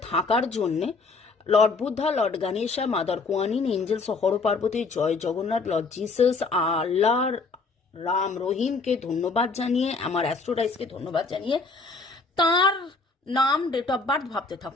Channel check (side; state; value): right; quieter; 4.1 dB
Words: থাকার জন্যে lord Buddha, lord Ganesha, mother Kuanyin, angels, Har Parvati, জয় জগন্নাথ, লর্ড জিসাস, আল্লাহ, রাম রহিমকে ধন্যবাদ জানিয়ে, আমার অ্যাস্ট্রোডাইসকে ধন্যবাদ জানিয়ে তার নাম, ডেট অফ বার্থ ভাবতে